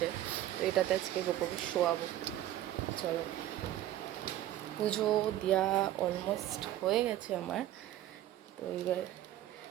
তো এটাতে আজকে গোপুকে শোয়াবো। চলো, পুজো দেওয়া অলমোস্ট হয়ে গেছে আমার। তো এবার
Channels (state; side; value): quieter; left; 13.3 dB